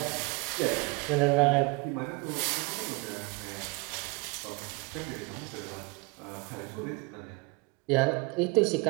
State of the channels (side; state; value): left; quieter; 27.1 dB